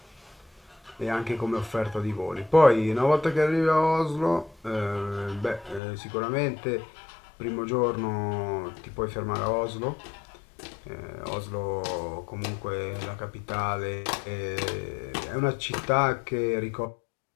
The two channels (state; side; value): drops out; right; at 5.8 s